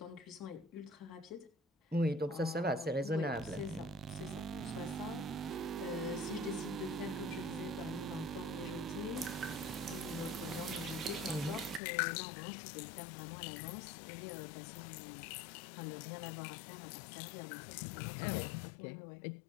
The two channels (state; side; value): drops out; right; at 11.8 s